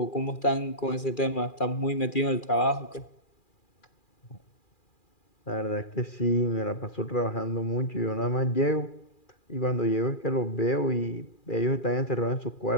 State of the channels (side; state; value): right; late; 2.4 ms